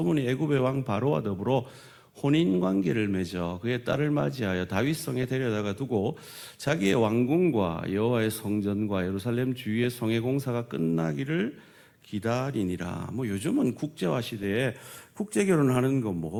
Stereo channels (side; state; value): both; identical; correlation 1.00